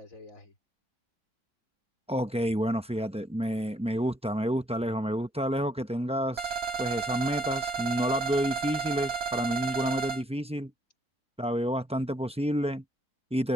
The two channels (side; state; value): both; normal; correlation 0.70